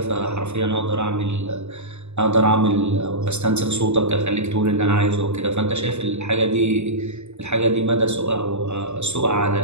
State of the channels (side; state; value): left; late; 0.82 ms